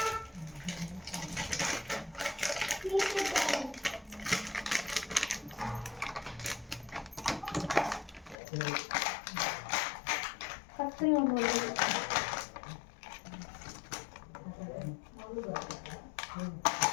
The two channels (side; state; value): right; drops out; at 8.3 s